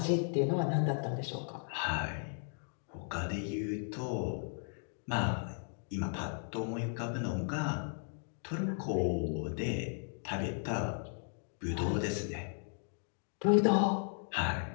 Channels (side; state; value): right; silent; 54 dB below the other